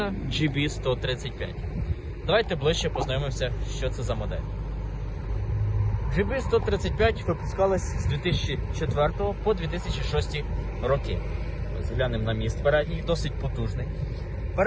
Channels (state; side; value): identical; both; correlation 1.00